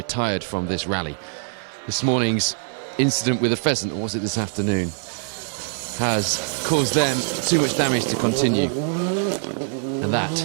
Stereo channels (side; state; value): left; silent; digital silence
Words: from this rally. This morning's incident with a pheasant, or was it this afternoon, has caused them too much damage to continue. And that